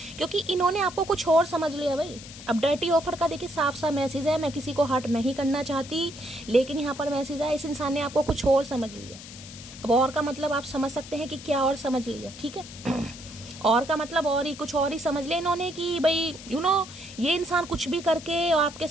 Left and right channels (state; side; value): noise; left; hiss, 15 dB below the sound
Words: क्योंकि इन्होंने आपको कुछ और समझ लिया भाई। अब डर्टी ऑफर का देखिए साफ सा मैसेज है, मैं किसी को हर्ट नहीं करना चाहती, लेकिन यहाँ पर मैसेज है, इस इंसान ने आपको कुछ और समझ लिया। अब और का मतलब आप समझ सकते हैं कि क्या और समझ लिया, ठीक है और का मतलब और ही कुछ और ही समझ लिया इन्होंने कि भाई ये इंसान कुछ भी करके आपके